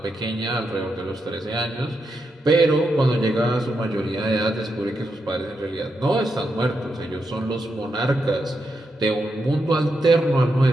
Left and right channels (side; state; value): both; normal; correlation 0.84